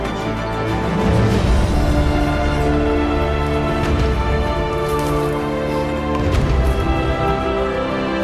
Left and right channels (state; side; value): identical; both; correlation 1.00